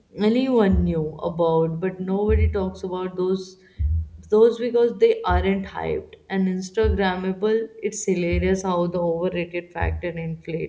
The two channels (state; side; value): identical; both; correlation 1.00